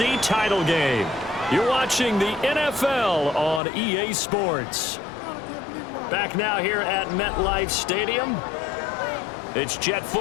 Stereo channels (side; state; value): right; drops out; at 3.6 s